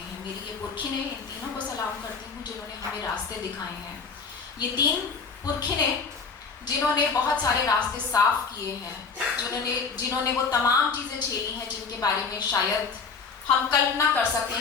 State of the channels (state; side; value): quieter; right; 5.1 dB